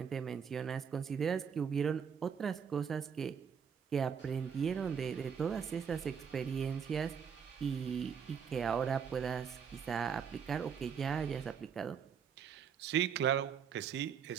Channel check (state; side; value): quieter; left; 7.1 dB